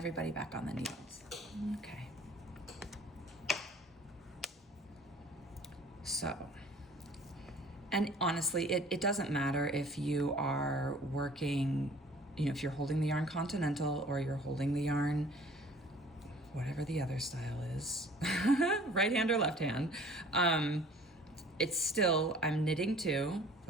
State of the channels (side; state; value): both; normal; correlation 0.50